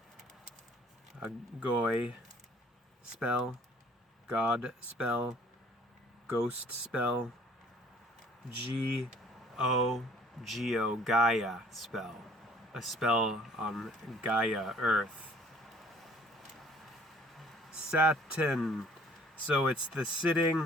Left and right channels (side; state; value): both; normal; correlation 0.55